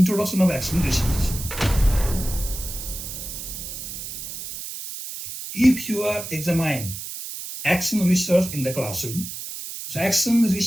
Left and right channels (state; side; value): noise; right; hiss, 8 dB below the sound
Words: of action research. If you are examining action research in the classroom, so action